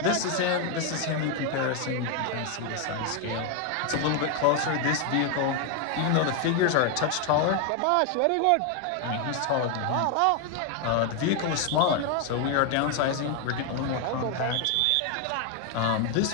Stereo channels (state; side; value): different; both; correlation 0.01